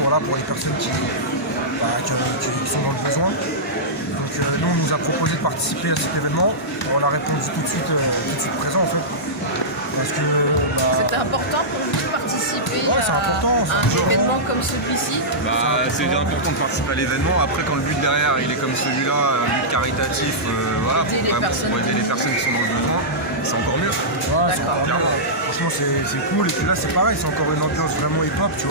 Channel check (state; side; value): normal; both; correlation -0.14